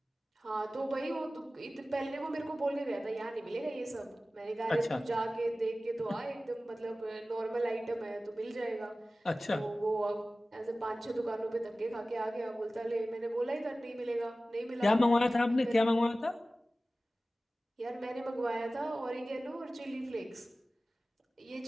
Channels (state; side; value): normal; both; correlation 0.96